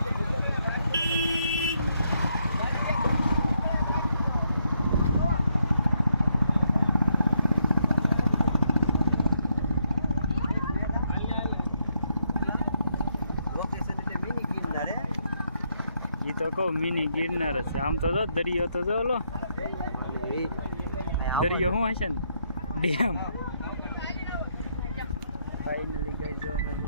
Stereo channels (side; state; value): both; inverted; correlation -0.77